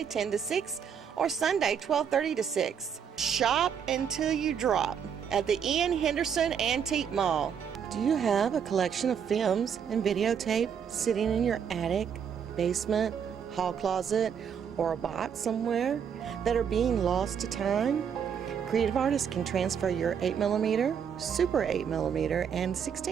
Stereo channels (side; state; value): left; quieter; 7.6 dB